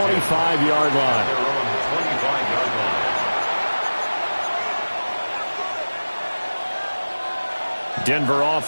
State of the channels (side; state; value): both; inverted; correlation -1.00